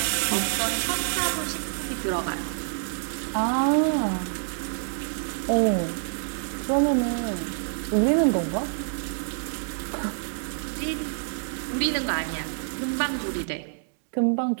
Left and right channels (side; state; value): left; silent; 60 dB below the other